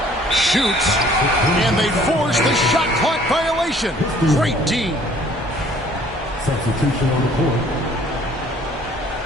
Shoots. And they force the shot clock violation. Great D. Substitution on the court.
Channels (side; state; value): both; normal; correlation 0.57